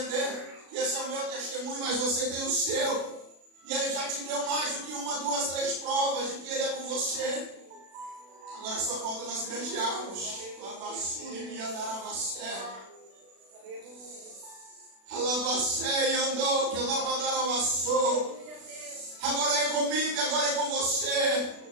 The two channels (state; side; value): late; left; 36 ms